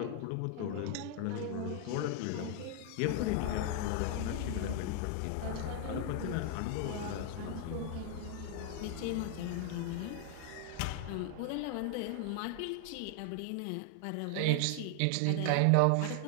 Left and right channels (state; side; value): different; both; correlation 0.00